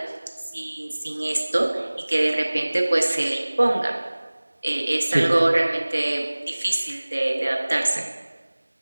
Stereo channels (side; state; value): both; inverted; correlation -1.00